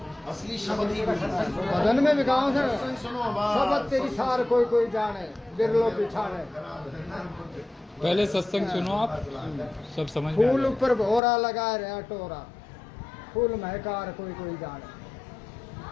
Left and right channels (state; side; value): drops out; right; at 11.2 s